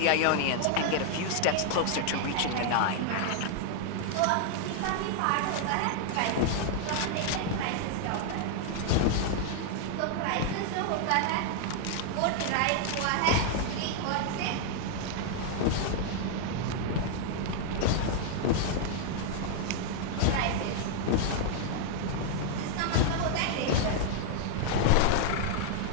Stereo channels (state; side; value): different; both; correlation 0.00